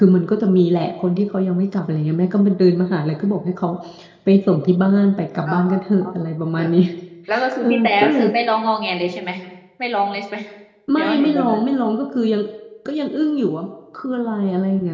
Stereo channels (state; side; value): identical; both; correlation 1.00